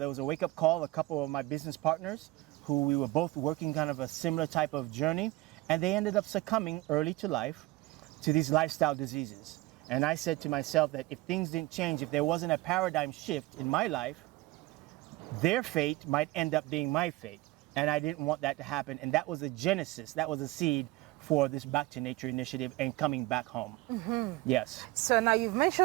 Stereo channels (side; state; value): left; quieter; 19.7 dB